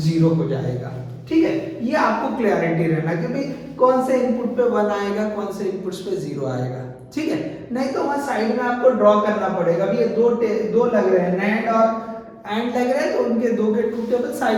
हो जाएगा, ठीक है। ये आपको क्लैरिटी रहना कि भाई कौन से इनपुट पे 1 आएगा, कौन से इनपुट्स पे 0 आएगा, ठीक है। नहीं तो वहां साइड में आपको ड्रॉ करना पड़ेगा। अभी ये दो लग रहे हैं, नैंड और एंड लग रहे हैं, तो उनके दो के ट्रूथ टेबल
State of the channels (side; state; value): both; identical; correlation 1.00